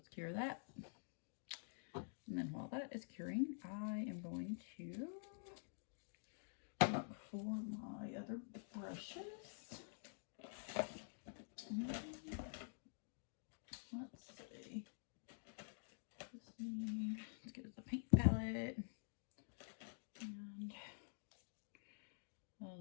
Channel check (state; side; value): silent; right; digital silence